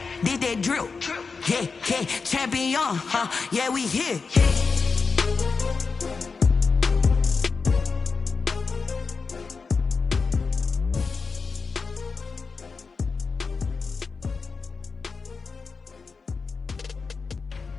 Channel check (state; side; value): quieter; right; 4.8 dB